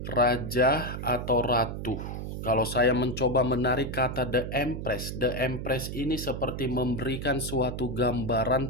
raja atau ratu. Kalau saya mencoba menarik kata The Empress ini seperti memberikan suatu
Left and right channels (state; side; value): noise; right; hum, 6 dB below the sound